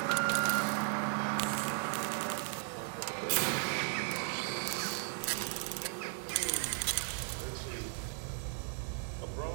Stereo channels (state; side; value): silent; left; 54 dB below the other